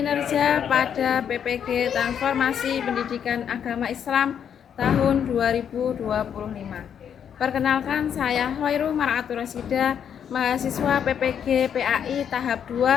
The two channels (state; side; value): quieter; right; 8.4 dB